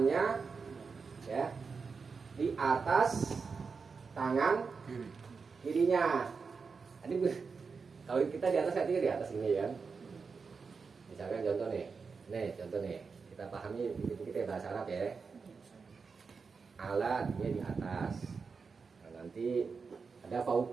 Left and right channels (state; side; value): quieter; left; 5.1 dB